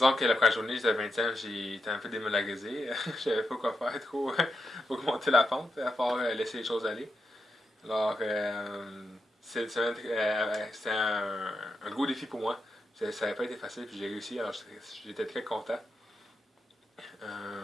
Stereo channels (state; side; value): normal; both; correlation 0.86